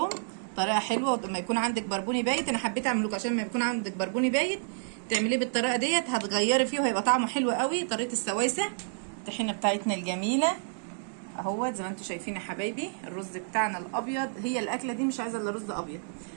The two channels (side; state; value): left; silent; digital silence